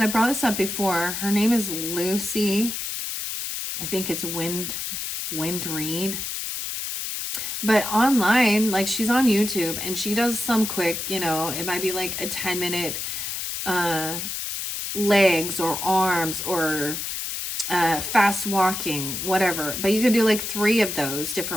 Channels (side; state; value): left; noise; hiss, 4 dB below the sound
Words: I brought this up before, her name is Lucy. I think it's Wind Reed. But online, like she's on YouTube and she does some quick, it might be like a 10-minute legs or arms or fast walking, whatever. But you can do like 3 of those